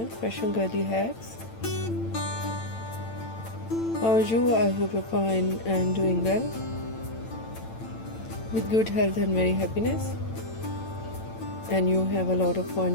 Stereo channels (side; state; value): right; late; 8.9 ms